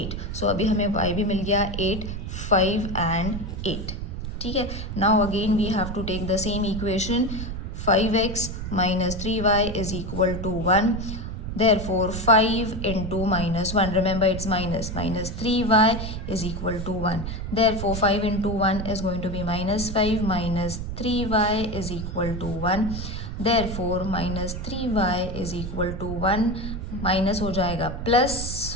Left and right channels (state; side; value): noise; right; rumble, 6 dB below the sound